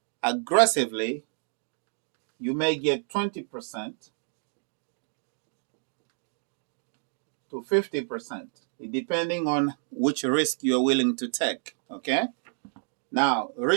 aggressively, you may get 20% to 50%, depending on which risk you're willing to take, okay? Now,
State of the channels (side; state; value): left; silent; 59 dB below the other